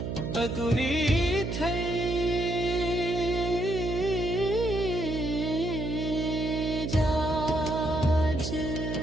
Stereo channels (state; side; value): noise; right; hum, 4 dB below the sound